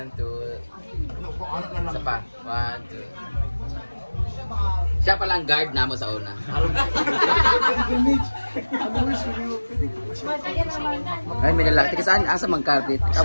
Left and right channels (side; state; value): both; inverted; correlation -1.00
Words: 2. Isa pa. 1, 2. Siya palang guard na mo sa una. Ay, may lalaki. Tika saan? Asa mang carpet?